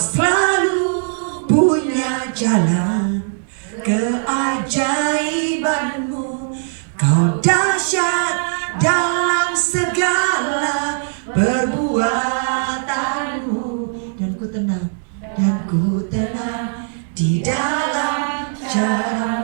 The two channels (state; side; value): silent; left; 66 dB below the other